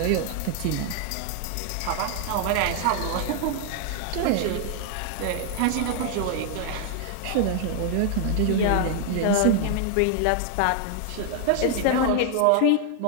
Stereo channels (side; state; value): both; different; correlation 0.00